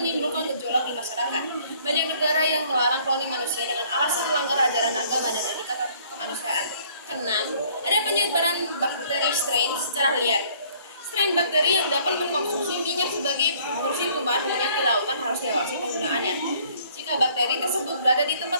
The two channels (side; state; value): both; inverted; correlation -0.59